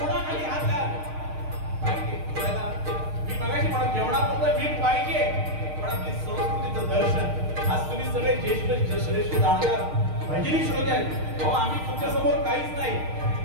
हात घाल पाहिजे. मी मगाशी म्हणत जेवणापुरतं मीठ पाहिजे, पण आपली संस्कृतीचं दर्शन. आज तुम्ही सगळे ज्येष्ठ श्रेष्ठ जाणकार भजनी श्रोते आहेत. अहो आम्ही तुमच्या समोर काहीच नाही,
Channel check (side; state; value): left; late; 6.5 ms